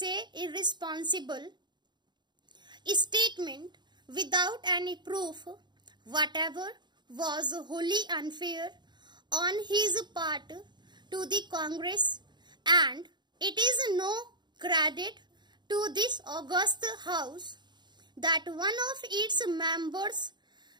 irresponsible statement, without any proof whatever, was wholly unfair on his part to the Congress, and it is no credit to this august house that one of its members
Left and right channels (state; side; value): late; left; 0.21 ms